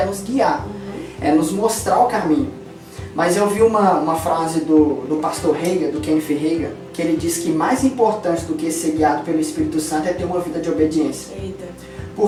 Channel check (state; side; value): identical; both; correlation 1.00